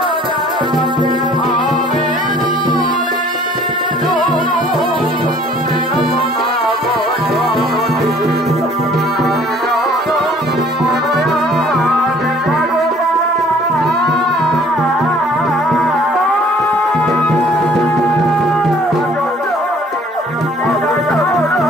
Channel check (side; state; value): both; normal; correlation 0.55